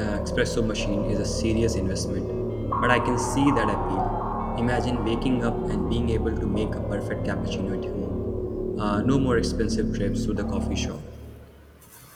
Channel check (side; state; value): both; identical; correlation 1.00